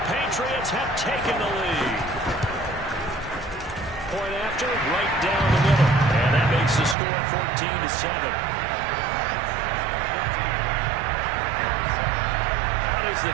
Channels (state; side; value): drops out; left; at 7.0 s